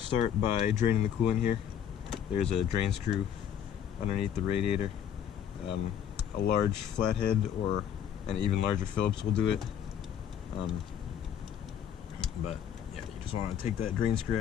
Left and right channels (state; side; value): quieter; right; 9.0 dB